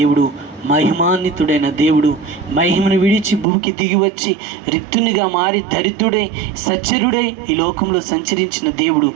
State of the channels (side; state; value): left; drops out; at 3.5 s